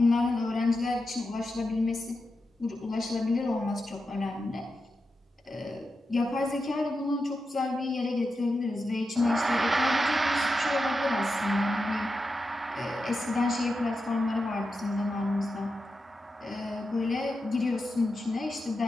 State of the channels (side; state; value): both; normal; correlation 0.89